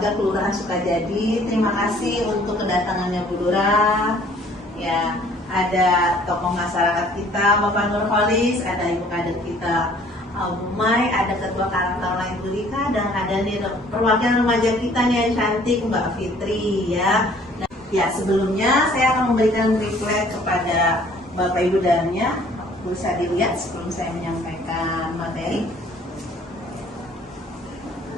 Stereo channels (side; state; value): both; normal; correlation 0.56